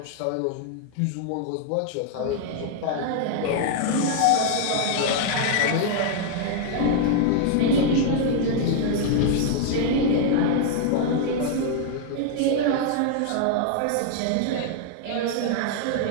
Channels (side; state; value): both; different; correlation 0.00